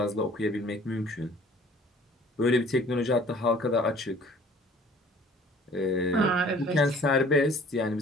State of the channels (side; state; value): both; normal; correlation 0.53